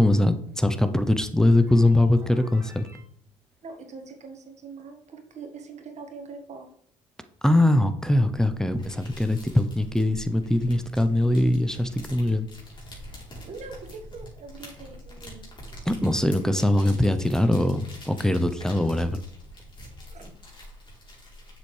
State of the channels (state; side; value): normal; both; correlation 0.92